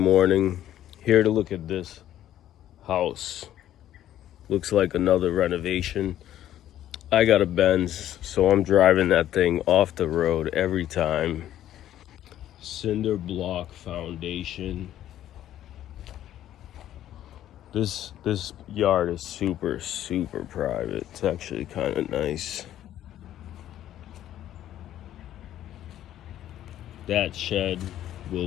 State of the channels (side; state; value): right; quieter; 12.1 dB